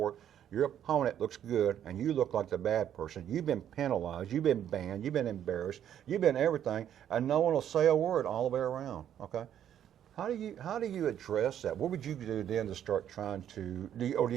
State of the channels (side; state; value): left; quieter; 10.2 dB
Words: your opponent looks good, and you look like the bad person. You've been penalized, you've been banned, you've been embarrassed, you've been everything, and no one will say a word all the way around, okay? How do you address that? What would you do then to start trying to, or do